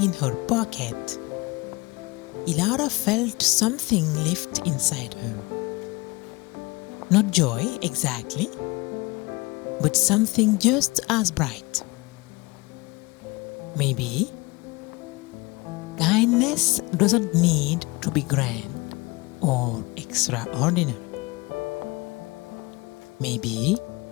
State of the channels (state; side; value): quieter; right; 24.2 dB